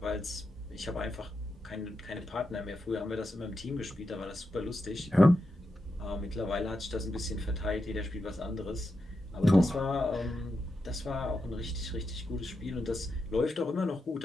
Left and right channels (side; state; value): both; normal; correlation 0.87